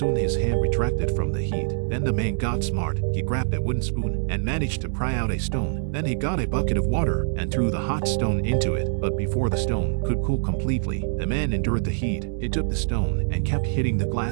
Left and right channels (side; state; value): left; silent; 62 dB below the other